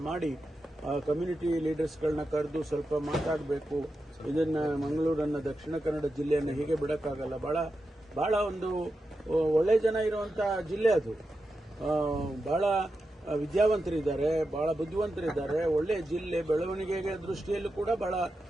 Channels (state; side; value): normal; both; correlation 0.89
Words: ಮಾಡಿ ಕಮ್ಯುನಿಟಿ ಲೀಡರ್ಸ್ಗಳನ್ನ ಕರೆದು ಸ್ವಲ್ಪ ಮಾತಾಡಬೇಕು. ಇದನ್ನ ಮಂಗಳೂರನ್ನ, ದಕ್ಷಿಣ ಕನ್ನಡ ಜಿಲ್ಲೆಯನ್ನು ಹೀಗೆ ಬಿಡಕ್ಕಾಗಲ್ಲ. ಬಹಳ ಒಂದು ಒಳ್ಳೆ ಜನ ಇರುವಂತ ಜಿಲ್ಲೆ ಅದು. ಬಹಳ ವಿದ್ಯಾವಂತರಿದ್ದಾರೆ, ಬಹಳ ಬುದ್ಧಿವಂತರಿದ್ದಾರೆ. ಒಳ್ಳೆ ಜಿಲ್ಲೆ, ಬೆಳವಣಿಗೆಗೆ ದೃಷ್ಟಿಯಲ್ಲೂ ಕೂಡ ಬಹಳ